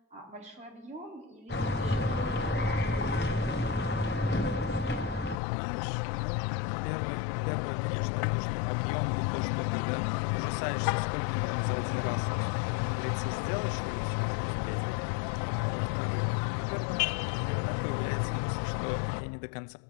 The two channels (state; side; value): drops out; right; at 5.4 s